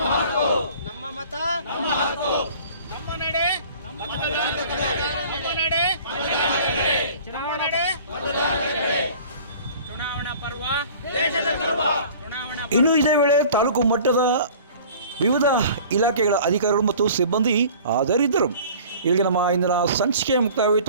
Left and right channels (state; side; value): inverted; both; correlation -0.46